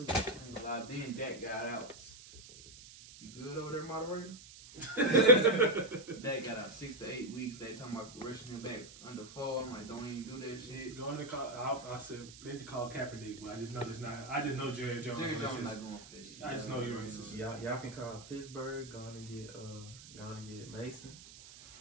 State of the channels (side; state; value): right; noise; hiss, 17 dB below the sound